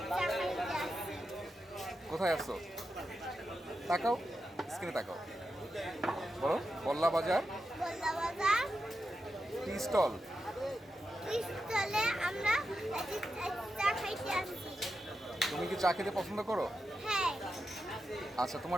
চা খাইতে আসছি। কোথায় আসছো? তাকাও, স্ক্রিনে তাকাও, বলো। বল্লা বাজার বল্লা বাজার টি স্টল। চলে আমরা আজ চা খাইতে আসছি। তুমি কি চা খেতে পছন্দ করো? হ্যাঁ, আচ্ছা,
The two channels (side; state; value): both; normal; correlation 0.89